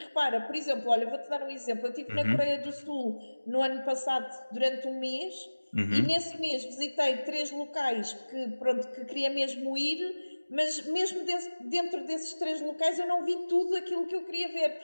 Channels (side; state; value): both; inverted; correlation -1.00